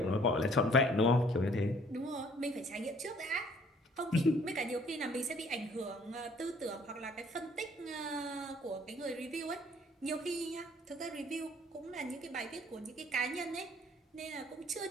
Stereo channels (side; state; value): both; normal; correlation 0.59